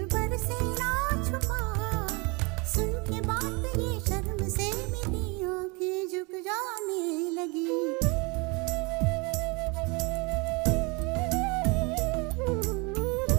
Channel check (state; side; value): quieter; left; 28.8 dB